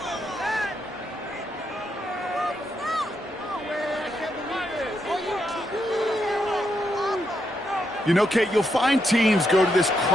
You know, Kate, you'll find teams go to this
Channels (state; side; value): normal; both; correlation 0.81